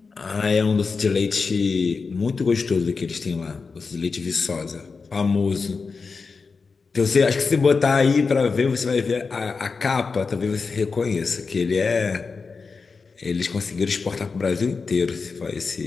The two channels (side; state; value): right; quieter; 4.7 dB